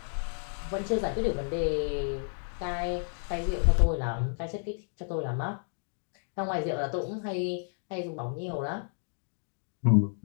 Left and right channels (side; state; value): right; silent; 57 dB below the other